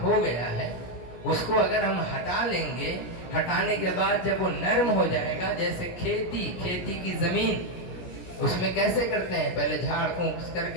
ہو گیا ہے اس کو اگر ہم ہٹا لیں گے, ہٹانے کے بعد جب وہ نرم ہو جائے گا, جیسے کھیتی کی زمین اس میں کیسے کرتے ہیں, پہلے جھاڑ پھونک کر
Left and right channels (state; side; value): late; right; 17 ms